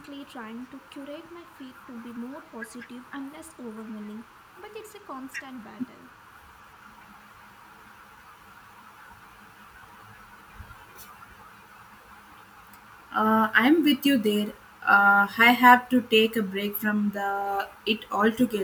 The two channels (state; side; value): identical; both; correlation 1.00